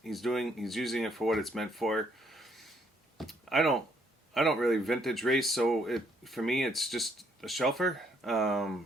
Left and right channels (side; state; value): both; normal; correlation 0.69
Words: He's using it for what it's meant for. I don't really vintage race, so for me it's just a shelfer.